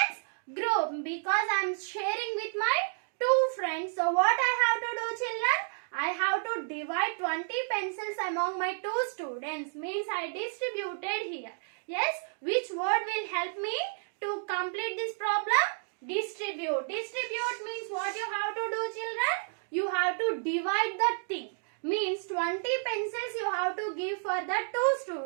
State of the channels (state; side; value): silent; left; digital silence